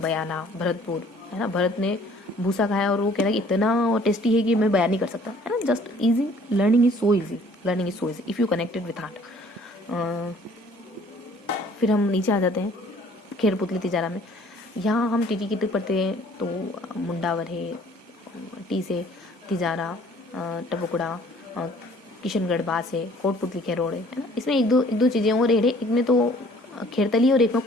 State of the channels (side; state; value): both; normal; correlation 0.56